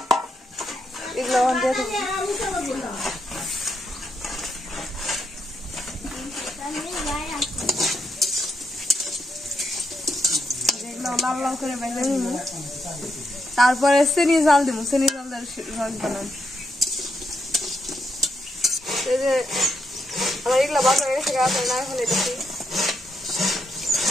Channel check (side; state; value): both; normal; correlation 0.80